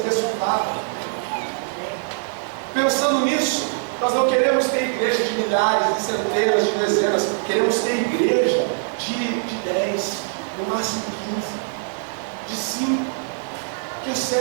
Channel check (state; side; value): silent; left; digital silence